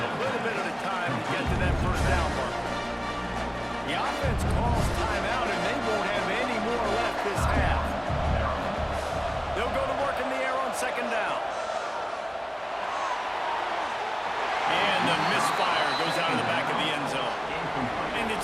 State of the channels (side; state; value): both; identical; correlation 1.00